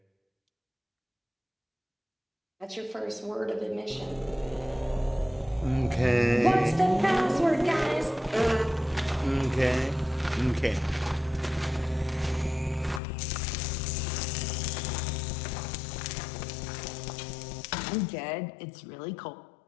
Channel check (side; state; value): right; drops out; at 13.0 s